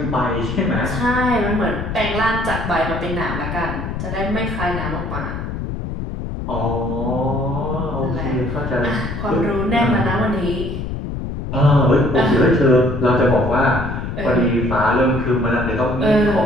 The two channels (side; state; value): left; noise; rumble, 5 dB below the sound